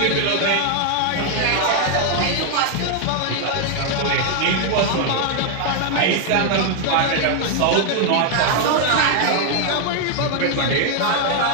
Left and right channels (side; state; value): both; different; correlation 0.00